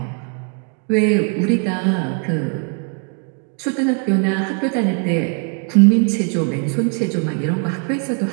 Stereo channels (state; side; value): quieter; left; 39.2 dB